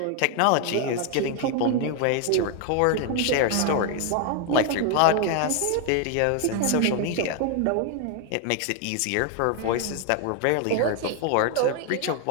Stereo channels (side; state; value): both; different; correlation 0.01